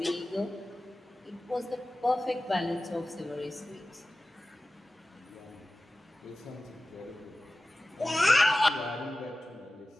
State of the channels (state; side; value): normal; both; correlation 0.96